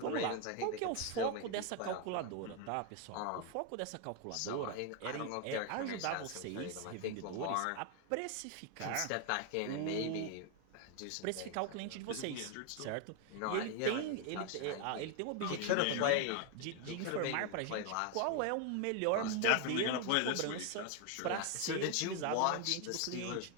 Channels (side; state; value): both; different; correlation 0.01